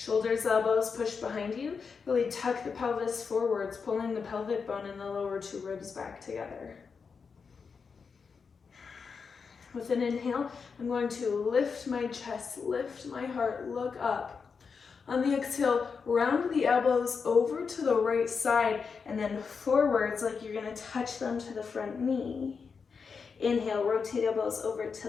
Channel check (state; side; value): quieter; right; 5.5 dB